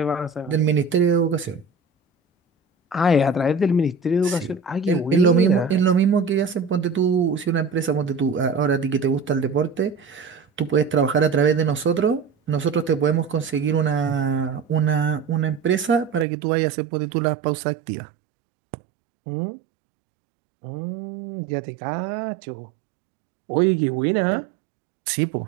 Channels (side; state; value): left; drops out; at 16.2 s